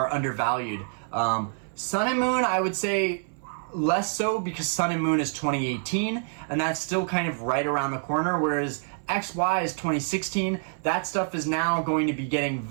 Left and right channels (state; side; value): silent; left; 60 dB below the other